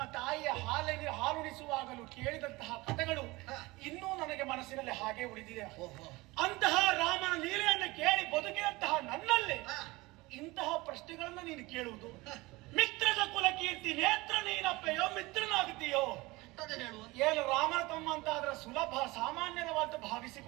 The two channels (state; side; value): quieter; left; 21.9 dB